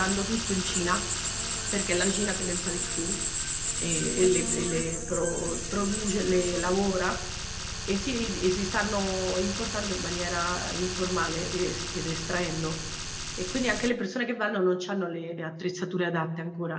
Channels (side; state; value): both; identical; correlation 1.00